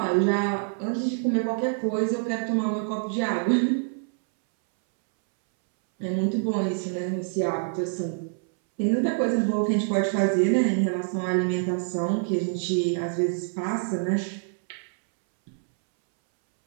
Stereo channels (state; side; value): silent; left; 61 dB below the other